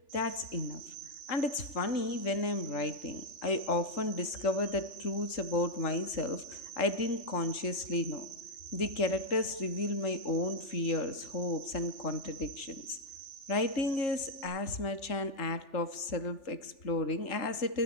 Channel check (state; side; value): late; right; 3.4 ms